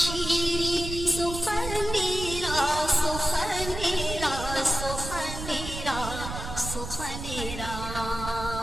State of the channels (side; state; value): right; noise; rumble, 8 dB below the sound